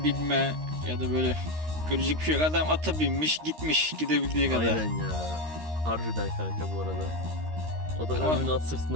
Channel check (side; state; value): left; late; 13 ms